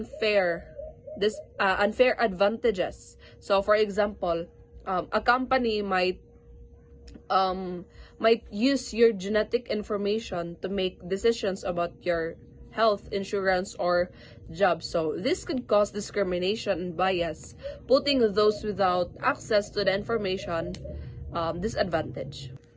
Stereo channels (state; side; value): identical; both; correlation 1.00